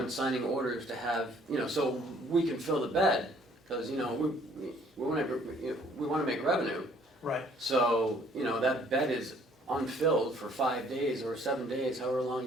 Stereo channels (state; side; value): normal; both; correlation 0.60